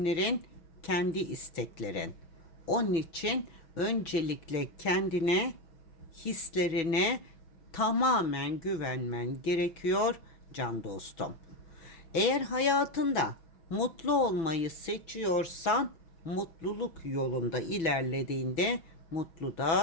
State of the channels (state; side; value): late; right; 6.1 ms